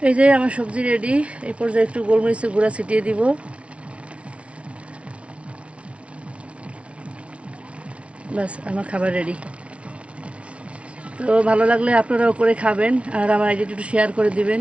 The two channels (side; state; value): left; late; 0.061 ms